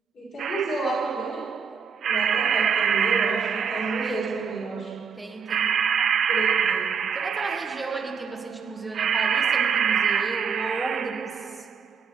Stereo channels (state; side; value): quieter; left; 6.1 dB